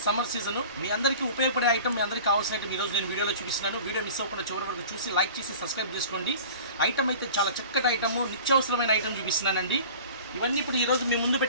summer season. మీ అందరికీ ఉపయోగపడే ఐటమ్, మీ అందరికీ కావాల్సిన ఐటమ్ ఈరోజు నేను వీడియోలో చూపిస్తున్నాను. వీడియో మిస్ అవ్వకుండా చివరి వరకు చూసి లైక్ చేసి సబ్స్క్రైబ్ చేసుకోండి. ఐటమ్ అయితే చాలా చక్కటి ఐటమ్, నిత్యావసరమైన ఐటమ్ చూపిస్తున్నానండి. ఇవన్నీ ఇప్పుడు ఈరోజు మీ ముందు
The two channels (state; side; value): inverted; both; correlation -0.41